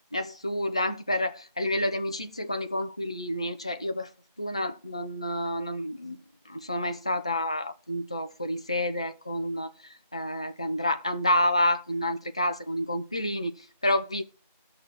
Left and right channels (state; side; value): inverted; both; correlation -0.74